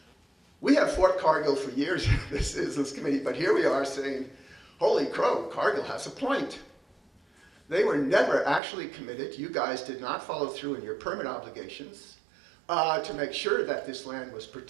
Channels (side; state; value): left; drops out; at 8.6 s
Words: We have fought Cargill for years in the Citizens Committee, but here we are saying, holy crow, Cargill has a point. They were never actually committed. You guys did not follow through in your permit obligations to make sure that this land was